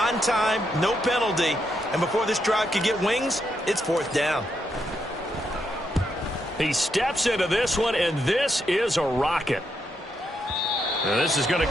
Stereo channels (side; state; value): both; normal; correlation 0.80